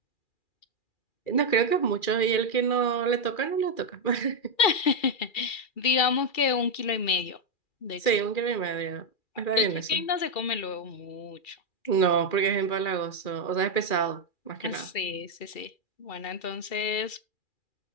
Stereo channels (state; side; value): late; right; 2.4 ms